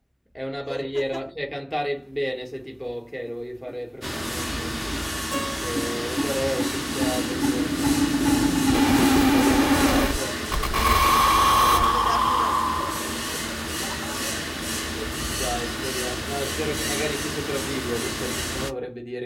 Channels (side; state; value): both; identical; correlation 1.00